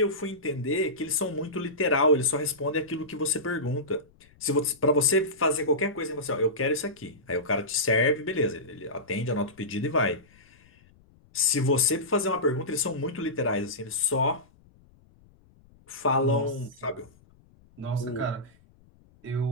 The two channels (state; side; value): noise; left; rumble, 29 dB below the sound